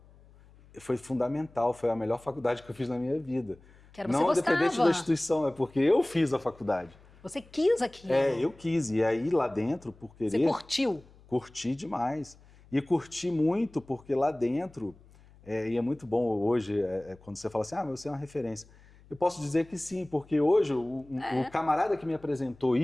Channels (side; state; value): left; noise; hum, 25 dB below the sound